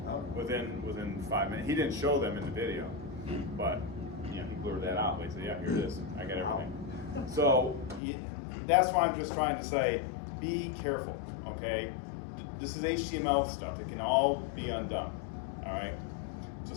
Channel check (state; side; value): drops out; right; at 8.0 s